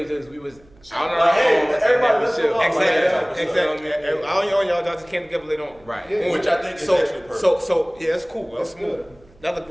We was out on our Hey, own. everybody listen chill. up. Exactly. All y'all just came together later on. Right. Yeah. Which I think is actually perfect. So yeah, that's cool. That's good. smooth. Another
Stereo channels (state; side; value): noise; right; hum, 28 dB below the sound